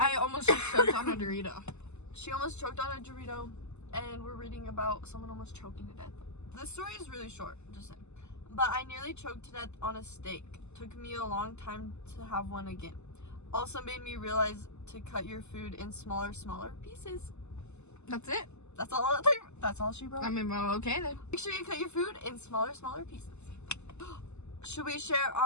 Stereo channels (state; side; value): late; right; 0.82 ms